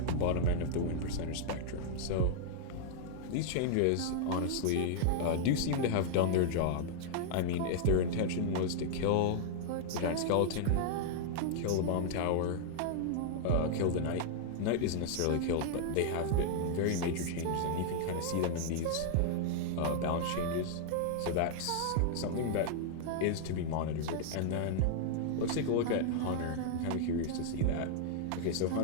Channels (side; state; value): both; different; correlation -0.01